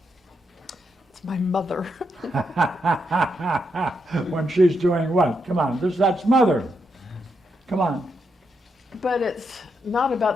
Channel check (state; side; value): normal; both; correlation 0.81